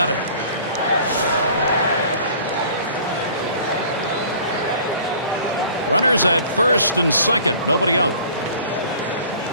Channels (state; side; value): inverted; both; correlation -0.48